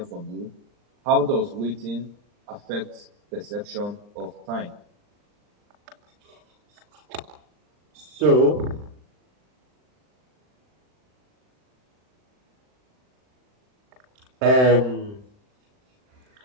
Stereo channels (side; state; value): left; late; 39 ms